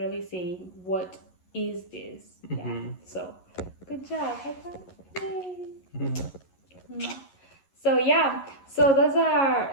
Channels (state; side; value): late; right; 11 ms